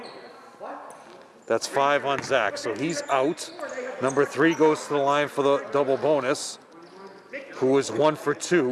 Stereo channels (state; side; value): identical; both; correlation 1.00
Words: That's 5 on Zach, so he's out. Number 3 goes to the line for the double bonus, who is 1 for